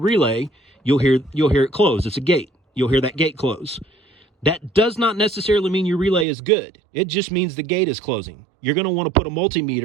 you'll hear it close. It's a gate. You'll hear that gate close. That does not necessarily mean your relay is good. It just means the gate is closing. You're going to want to put a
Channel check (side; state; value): left; drops out; at 6.2 s